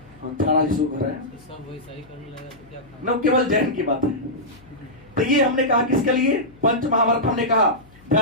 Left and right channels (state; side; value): noise; left; hum, 26 dB below the sound